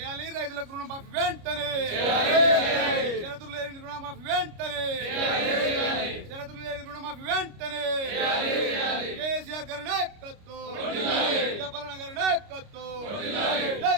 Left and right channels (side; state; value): left; late; 29 ms